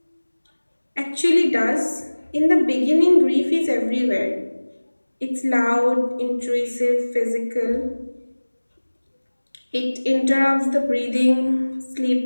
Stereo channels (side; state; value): both; inverted; correlation -1.00